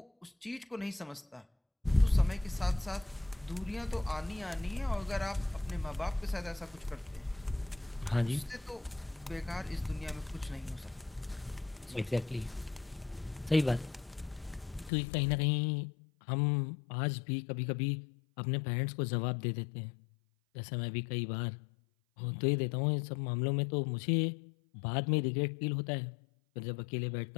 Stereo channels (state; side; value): drops out; right; at 14.9 s